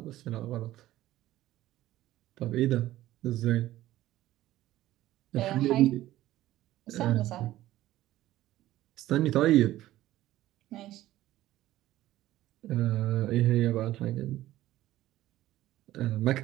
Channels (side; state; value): left; quieter; 15.0 dB